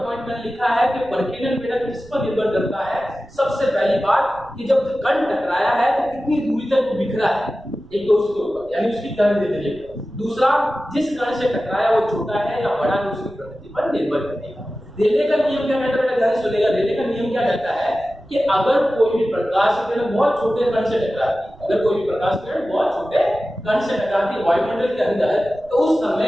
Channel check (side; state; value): right; noise; rumble, 23 dB below the sound